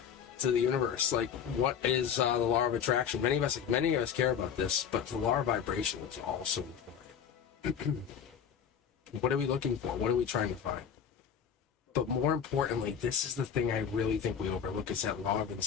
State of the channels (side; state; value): right; quieter; 7.9 dB